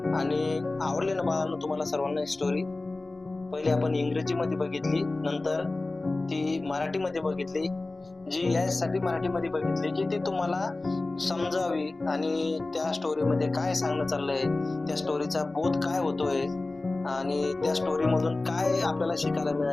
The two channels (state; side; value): quieter; right; 3.1 dB